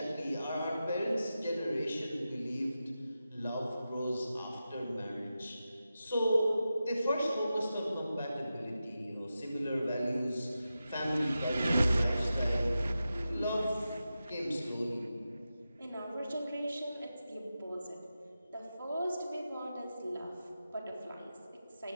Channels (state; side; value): inverted; both; correlation -0.91